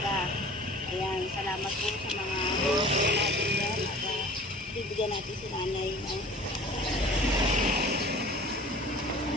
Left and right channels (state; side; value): normal; both; correlation 0.45